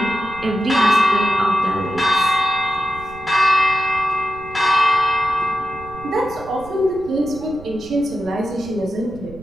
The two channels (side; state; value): right; noise; rumble, 18 dB below the sound